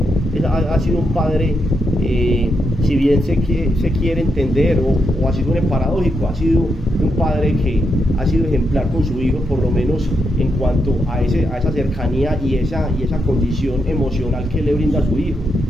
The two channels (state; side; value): normal; both; correlation 0.82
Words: ha sido un padre, si bien se quiere entender, o así suene paradójico, ha sido un padre que ha sido ejemplar con su hijo, por lo menos en cuanto a esa cercanía y esa condición emocional que le brinda a su hijo.